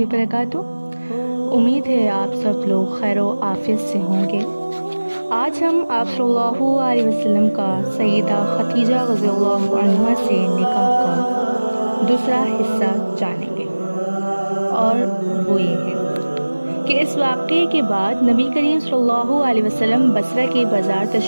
امید ہے آپ سب لوگ خیر و عافیت سے ہوں گے۔ آج ہم آپ صلی اللہ علیہ وسلم کا سیدہ خدیجہ رضی اللہ عنہا سے نکاح کا دوسرا حصہ جانیں گے، اور وہ یہ ہے کہ اس واقعے کے بعد نبی کریم صلی اللہ علیہ وسلم بصرہ کے بازار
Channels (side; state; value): both; inverted; correlation -1.00